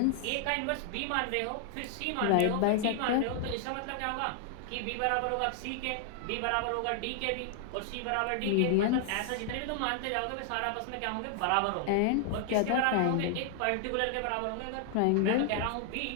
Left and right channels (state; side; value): different; both; correlation 0.00